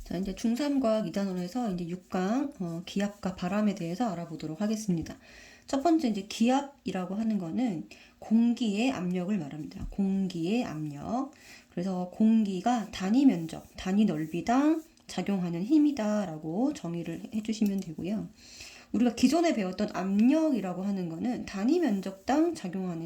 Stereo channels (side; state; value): both; identical; correlation 1.00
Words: 자, 이제 중3과학 2단원에서 이제 6강 기압과 바람에 대해서 알아보도록 하겠습니다. 첫 번째 이제 기압이라고 하는 거는 공기의 압력을 말합니다. 공기의 압력. 그래서 공기가 단위 면적, 단위 넓이당 작용하는 힘이다라고 정의를 해주시면 되고요. 우리가 기존에 배웠던 압력이라고 하는 거는 단위 면적당